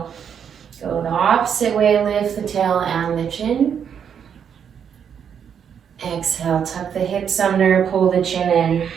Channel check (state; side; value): quieter; left; 7.9 dB